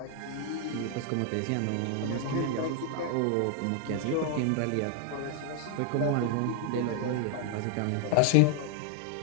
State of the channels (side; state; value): both; different; correlation 0.00